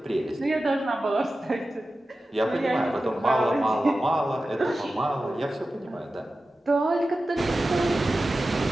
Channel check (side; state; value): both; normal; correlation 0.94